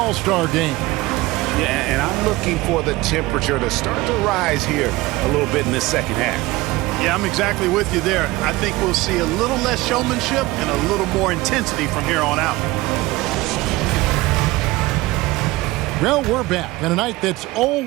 game. Yeah, and I'm looking for the temperature to start to rise here a little bit in this second half. Yeah, I'm exactly with you there. I think we'll see a little less showmanship and a little more intensity from here on out. Well, we're back on a night that's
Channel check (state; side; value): quieter; left; 19.8 dB